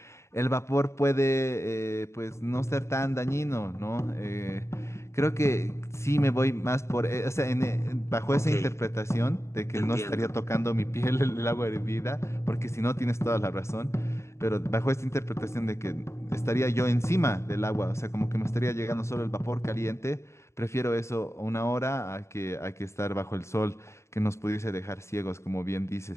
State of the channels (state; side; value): late; right; 0.13 ms